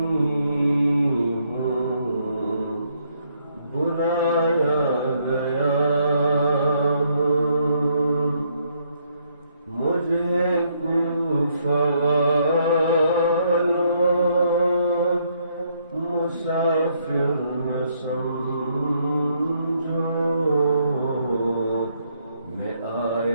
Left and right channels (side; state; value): both; inverted; correlation -0.71